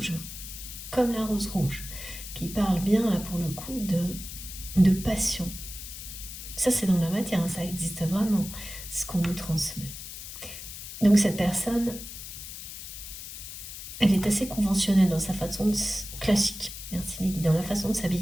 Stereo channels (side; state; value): left; noise; hiss, 11 dB below the sound